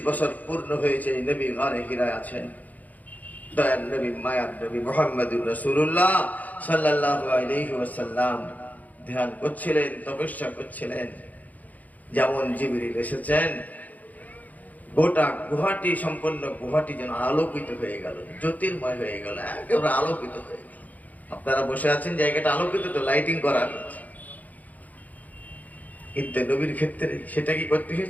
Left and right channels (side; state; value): right; late; 0.078 ms